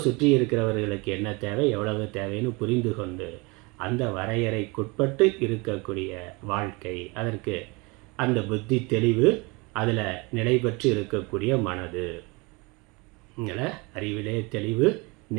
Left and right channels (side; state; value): left; quieter; 27.0 dB